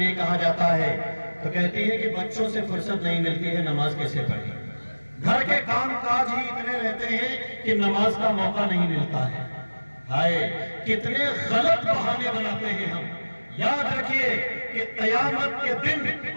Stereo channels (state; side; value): inverted; both; correlation -1.00